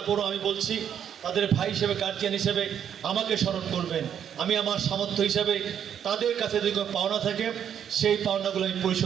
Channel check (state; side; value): quieter; left; 8.9 dB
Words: আমি বলছি তাদের ভাই হিসেবে গার্জিয়ান হিসেবে আমাকে স্মরণ করবেন। আমি আমার সামর্থ্য হিসাবে তাদের কাছে যদি কোনো পাওনা থাকে সেই পাওনাগুলো আমি